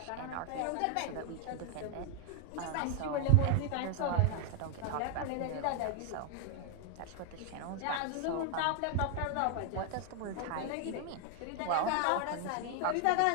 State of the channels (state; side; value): different; both; correlation 0.00